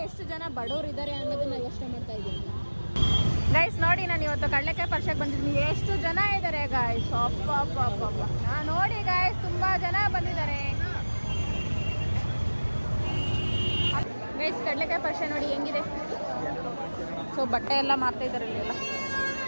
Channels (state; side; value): inverted; both; correlation -1.00